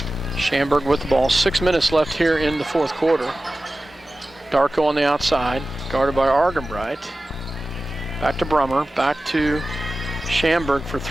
Schamberg with the ball. 6 minutes left here in the 4th quarter. Darko on the outside, guarded by Argenbright. Back to Brummer, back to Schamberg for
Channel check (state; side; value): normal; both; correlation 0.96